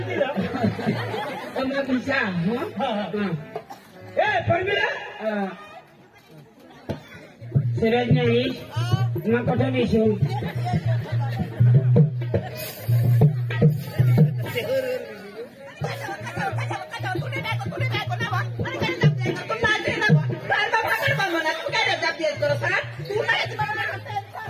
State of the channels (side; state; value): both; identical; correlation 1.00